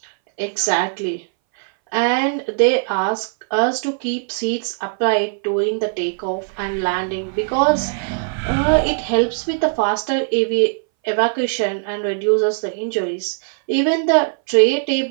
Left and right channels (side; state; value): left; silent; 62 dB below the other